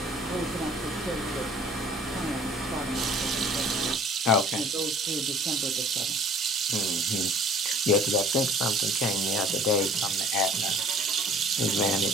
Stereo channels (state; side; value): normal; both; correlation 0.50